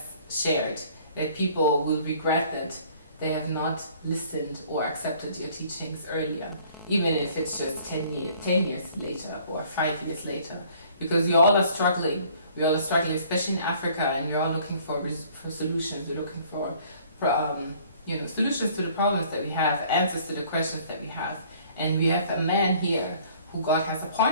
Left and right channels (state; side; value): inverted; both; correlation -0.56